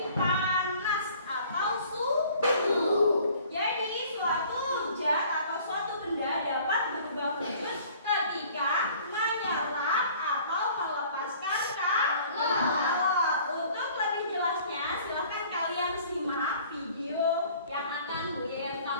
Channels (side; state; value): both; inverted; correlation -0.52